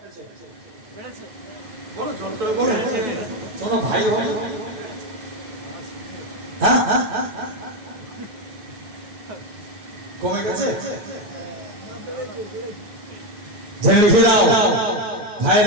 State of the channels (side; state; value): left; late; 9.7 ms